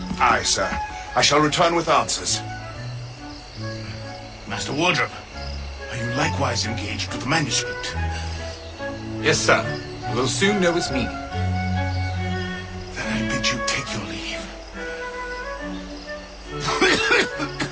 Aye, sir. I shall return with answers. Master Wardrobe, are you likewise engaged with the manuscript? Yes, sir. We'll soon know its meaning. Then I bid you take your leave.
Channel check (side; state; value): both; identical; correlation 1.00